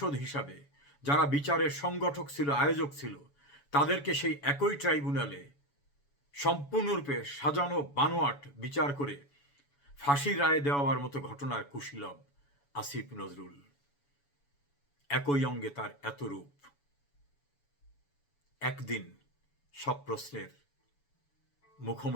হিসাবে যারা বিচারের সংগঠক ছিল, আয়োজক ছিল, তাদেরকে সেই একই ট্রাইব্যুনালে সম্পূর্ণরূপে সাজানো বানোয়াট বিচার করে ফাঁসির রায় দেওয়ার মতো ঘটনার কুশীলব আসিফ নজরুল। একই অঙ্গে তার এত রূপ। একদিন সব প্রশ্নের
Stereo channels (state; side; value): late; right; 7.1 ms